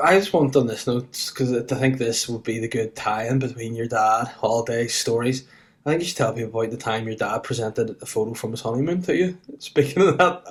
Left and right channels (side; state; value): both; identical; correlation 1.00